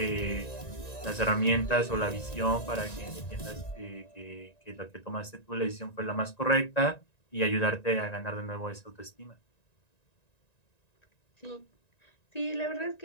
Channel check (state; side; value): late; right; 1.9 ms